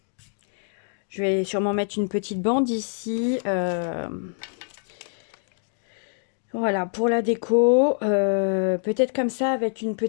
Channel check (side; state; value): right; silent; digital silence